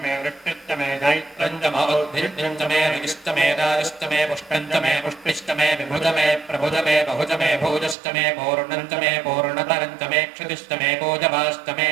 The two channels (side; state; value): left; drops out; at 8.0 s